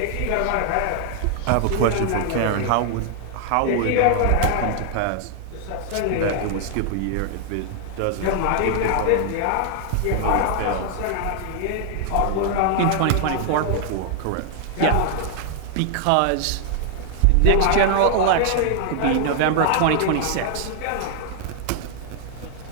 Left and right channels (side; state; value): both; different; correlation 0.00